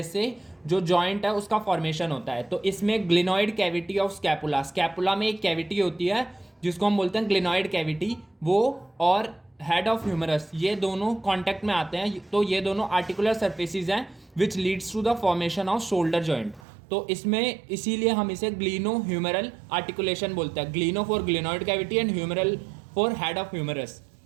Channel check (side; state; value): left; drops out; at 16.6 s